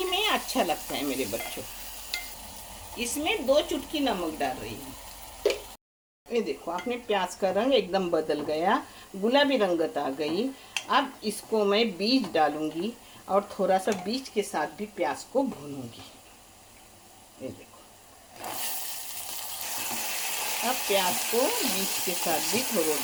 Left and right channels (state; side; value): identical; both; correlation 1.00